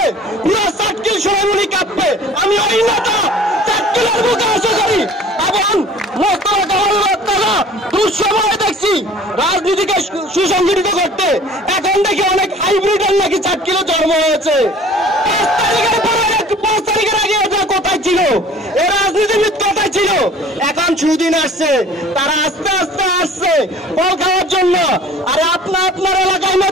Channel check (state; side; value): normal; both; correlation 0.48